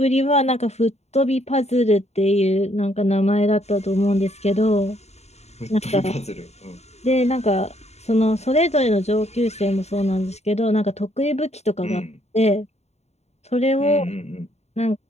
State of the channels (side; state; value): right; late; 0.31 ms